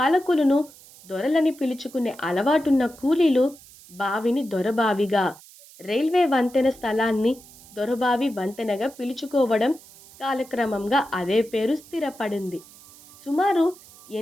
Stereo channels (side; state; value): right; noise; hiss, 22 dB below the sound